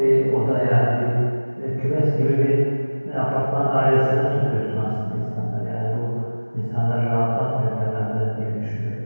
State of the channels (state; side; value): inverted; both; correlation -1.00